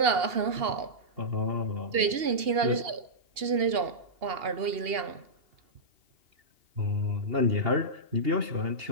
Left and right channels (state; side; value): late; left; 2.8 ms